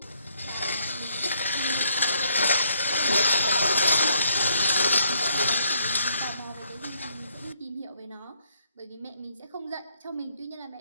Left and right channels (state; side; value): inverted; both; correlation -0.70